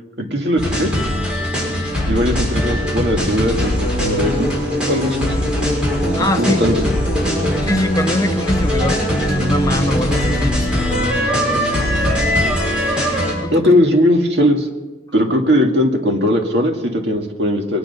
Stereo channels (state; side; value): normal; both; correlation 0.61